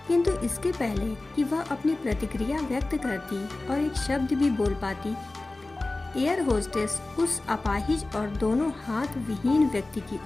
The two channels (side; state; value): right; quieter; 3.0 dB